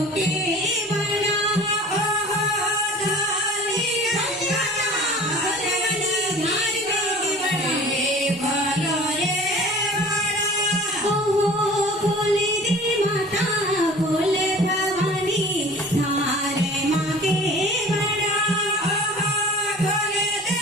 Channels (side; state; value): both; normal; correlation 0.43